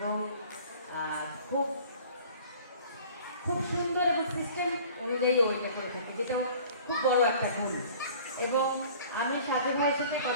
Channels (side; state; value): both; inverted; correlation -0.48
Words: খুব খুব সুন্দর এবং সিস্টেম অনুযায়ী ওইটা করে থাকে, যেটা খুব বড় একটা গুণ। এবং আমি সাজু ভাইয়ের সাথে